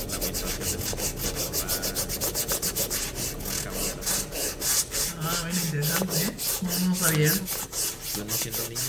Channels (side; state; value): both; identical; correlation 1.00